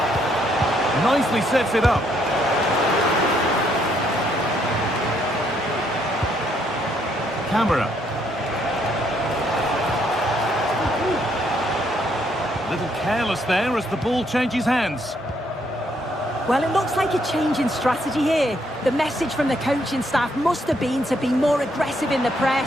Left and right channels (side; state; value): both; normal; correlation 0.71